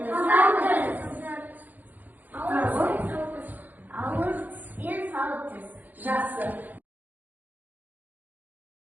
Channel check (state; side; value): late; left; 0.084 ms